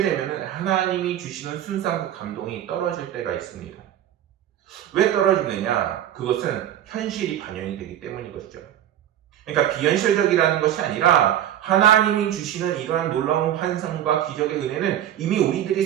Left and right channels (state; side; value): quieter; left; 11.3 dB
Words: 되면 하나님이 주시는 순수한 그 감동이 떨어질 때가 있습니다. 왜 떨어지느냐? 그것은 현실이 반영이 되기 때문인 것이죠. 그러니까 비현실적이라는 것이 아니라 하나님이 주시는 이러한 놀라운 환상과 기적의 은혜는 이미 우리들이